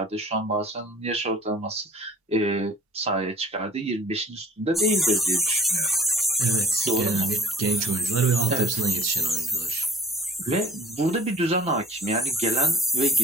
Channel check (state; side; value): normal; both; correlation 0.51